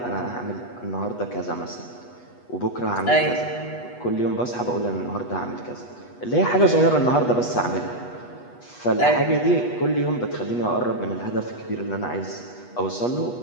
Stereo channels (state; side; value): late; right; 8.2 ms